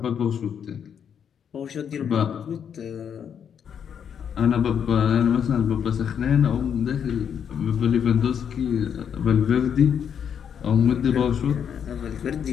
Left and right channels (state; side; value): quieter; right; 8.0 dB